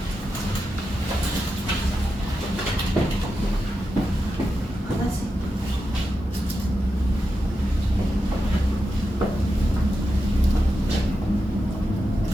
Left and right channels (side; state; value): both; normal; correlation 0.89